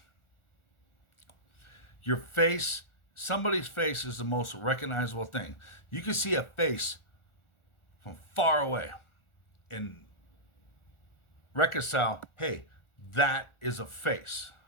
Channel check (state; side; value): late; right; 1.4 ms